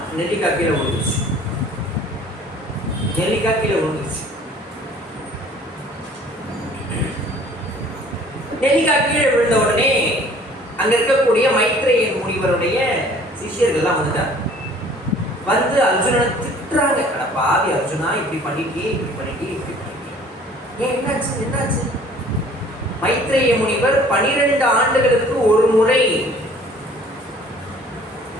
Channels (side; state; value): both; normal; correlation 0.52